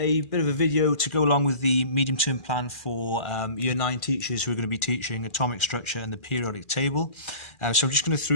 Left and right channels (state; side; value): late; right; 2.4 ms